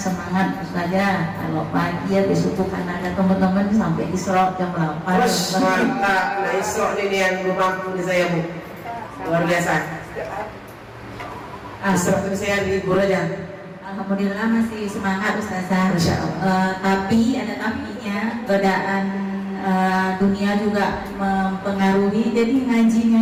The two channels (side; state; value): both; identical; correlation 1.00